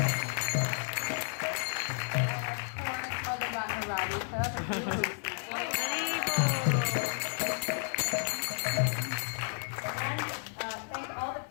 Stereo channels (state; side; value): silent; right; 56 dB below the other